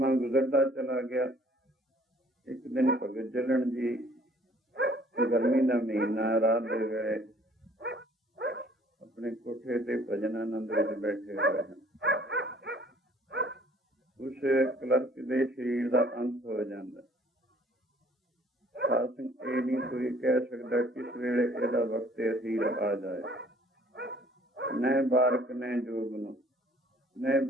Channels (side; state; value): both; normal; correlation 0.58